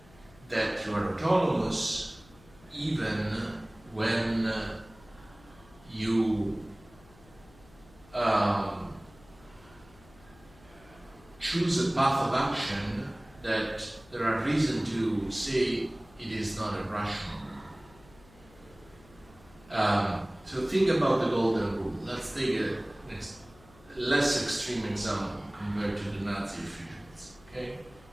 that you are autonomous even when you choose a path of action that there are reasons to say it is not irrational. So think about the golden rule. Let's take a less extreme example compared to the Nazi officials. Okay?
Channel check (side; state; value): left; noise; hum, 25 dB below the sound